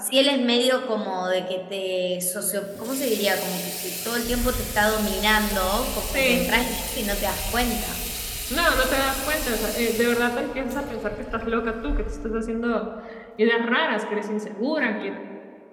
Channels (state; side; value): identical; both; correlation 1.00